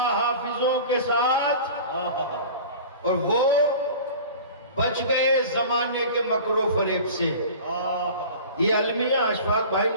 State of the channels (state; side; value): inverted; both; correlation -0.39